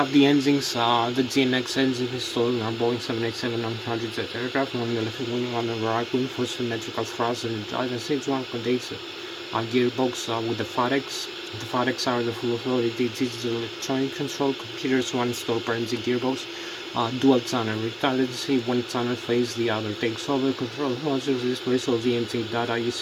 the engines, the GNX engine installed in our Boeing 787-900 jet aircraft, one on the left wing, one on the right wing for symmetrical thrust and guidance. Each one contains a gearbox with the FADEX. The FADEX are the full authority digital electronic control computers, one installed per engine gearbox, dual channel redundancy, one channel phase, the other takes over, control modules displays all the engine data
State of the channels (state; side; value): identical; both; correlation 1.00